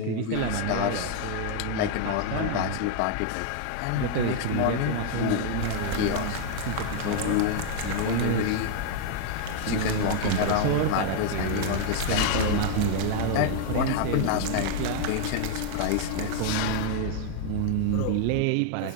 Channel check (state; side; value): different; both; correlation 0.00